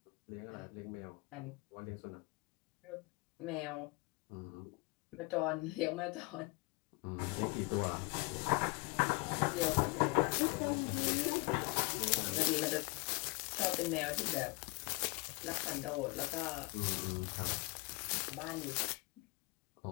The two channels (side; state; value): right; quieter; 27.0 dB